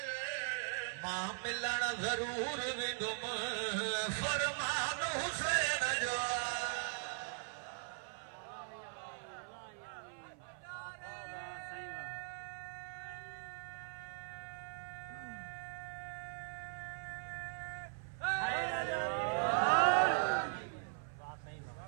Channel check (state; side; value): silent; left; 51 dB below the other